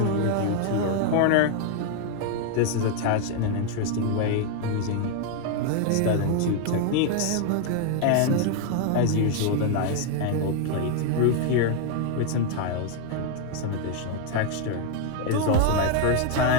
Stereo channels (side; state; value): both; different; correlation 0.01